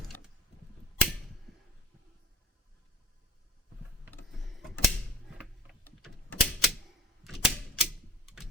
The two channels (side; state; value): both; normal; correlation 0.45